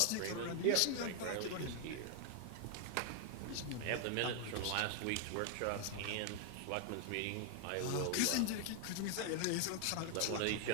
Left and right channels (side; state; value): both; different; correlation 0.00